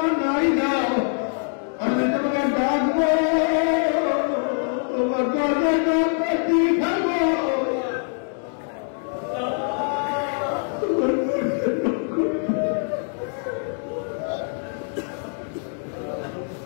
নাই দাও, আমি তোমাকে ডাকবো, তোমার দরজা করতে থাকবো।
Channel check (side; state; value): right; silent; 55 dB below the other